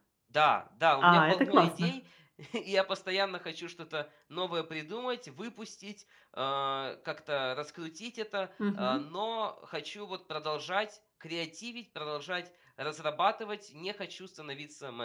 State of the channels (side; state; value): both; identical; correlation 1.00